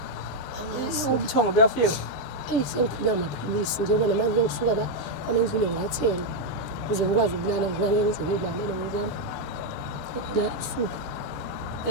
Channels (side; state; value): left; late; 6.7 ms